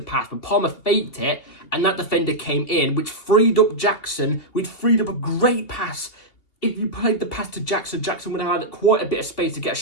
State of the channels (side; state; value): right; late; 3.0 ms